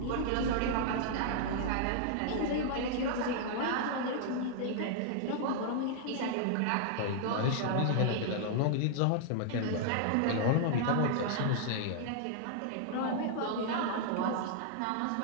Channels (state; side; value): different; both; correlation -0.01